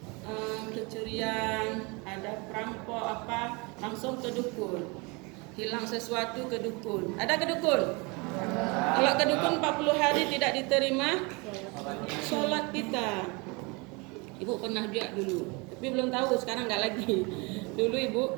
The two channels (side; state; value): left; quieter; 28.6 dB